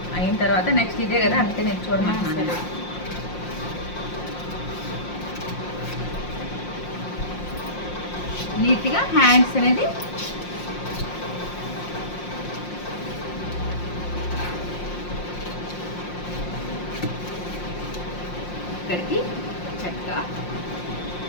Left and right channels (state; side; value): late; right; 5.6 ms